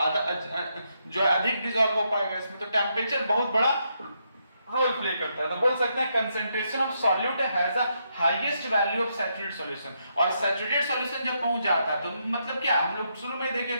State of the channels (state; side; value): inverted; both; correlation -0.79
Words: आधा जो अधिक डिसॉल्व हो पाएगा इसमें। तो टेंपरेचर बहुत बड़ा रोल प्ले करता है। तो बोल सकते हैं concentration of solute has a highest value of saturated solution. और सैचुरेटेड सॉल्यूशन जब पहुंच जाता है तो मतलब क्या, हम लोग शुरू में देखे